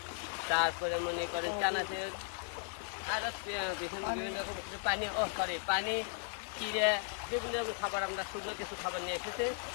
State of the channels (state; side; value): silent; right; 53 dB below the other